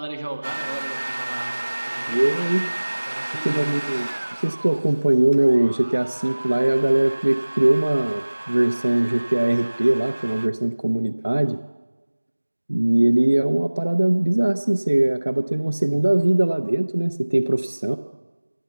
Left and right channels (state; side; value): inverted; both; correlation -1.00